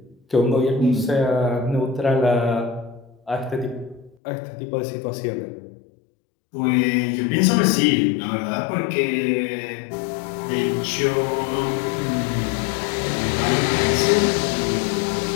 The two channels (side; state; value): right; drops out; at 4.2 s